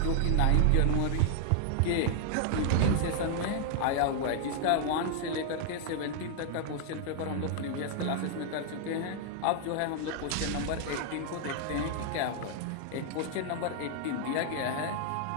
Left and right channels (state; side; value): different; both; correlation 0.00